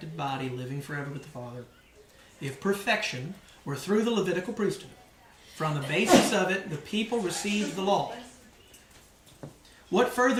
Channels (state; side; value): identical; both; correlation 1.00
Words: body, living forever with the Father, if perfection were through the Levitical priesthood, for on the basis of it, the people received the law. What